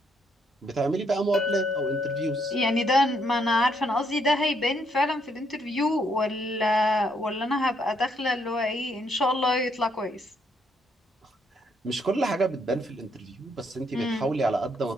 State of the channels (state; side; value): normal; both; correlation 0.72